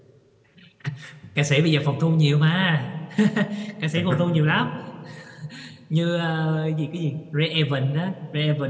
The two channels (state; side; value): identical; both; correlation 1.00